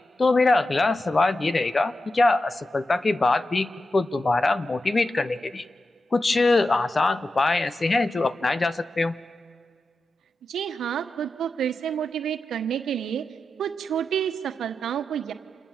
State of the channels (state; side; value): normal; both; correlation 0.90